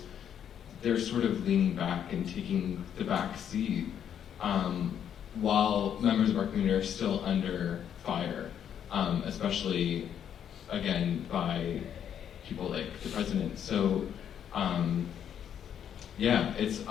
they're sort of leaning back and taking the back seat, while members of our community are still under fire, especially, again, by people like the president. So, it's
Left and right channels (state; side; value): quieter; right; 9.1 dB